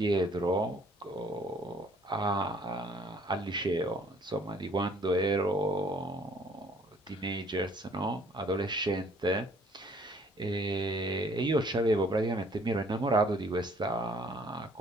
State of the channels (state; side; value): normal; both; correlation 0.59